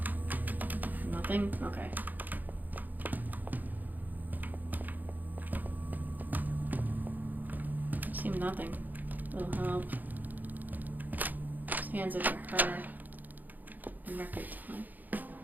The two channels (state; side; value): late; left; 0.084 ms